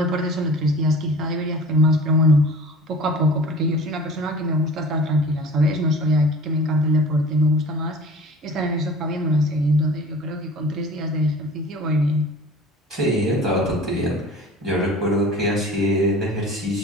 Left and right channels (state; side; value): normal; both; correlation 0.42